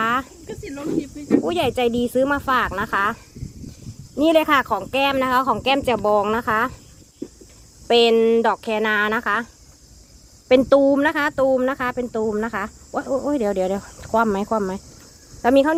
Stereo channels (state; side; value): identical; both; correlation 1.00